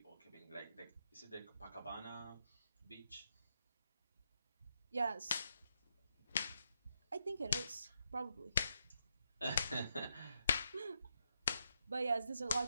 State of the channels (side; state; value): both; inverted; correlation -0.81